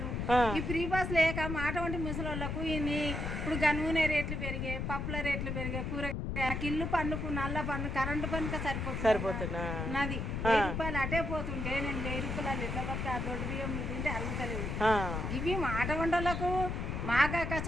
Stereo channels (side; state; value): left; noise; rumble, 3 dB below the sound